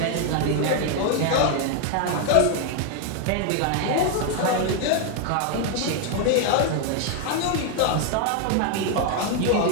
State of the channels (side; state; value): both; different; correlation 0.00